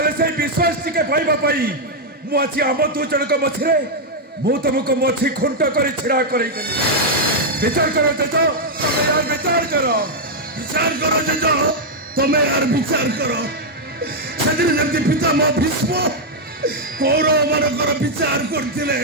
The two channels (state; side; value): normal; both; correlation -0.02